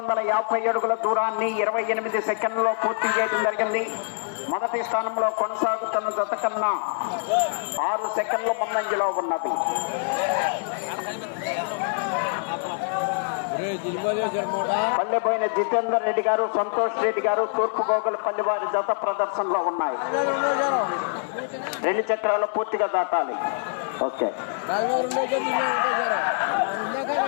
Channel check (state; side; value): silent; right; digital silence